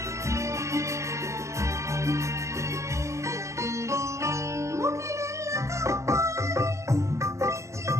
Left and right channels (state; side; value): late; left; 0.15 ms